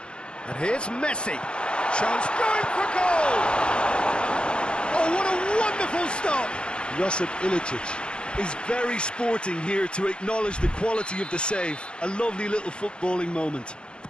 And here's Messi. Chance going for goal! Oh, what a wonderful stop! Josip Ilicic is very sporting here to acknowledge the quality of the save. A lovely little footballing moment.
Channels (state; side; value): late; right; 0.054 ms